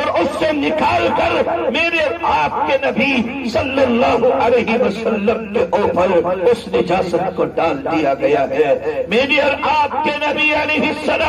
اس سے نکال کر میرے آپ کے نبی صلی اللہ علیہ وسلم کے اوپر اس نجاست کو ڈال دیا گیا ہے۔ میرے اور آپ کے نبی علیہ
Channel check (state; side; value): identical; both; correlation 1.00